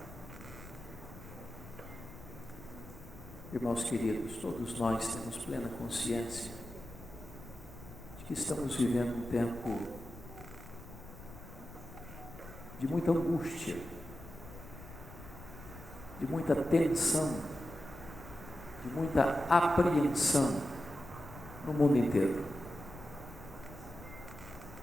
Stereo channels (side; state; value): left; noise; rumble, 15 dB below the sound